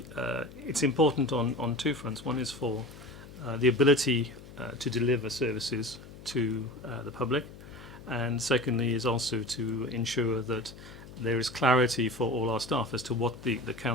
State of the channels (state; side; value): noise; left; hum, 17 dB below the sound